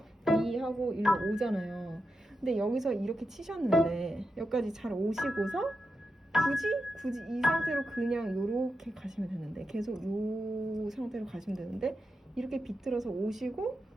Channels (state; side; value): normal; both; correlation 0.88